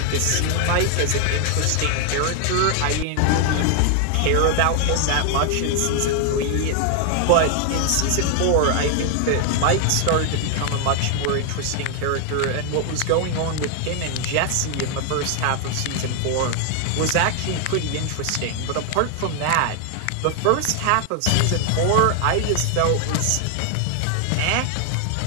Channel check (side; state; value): both; different; correlation 0.00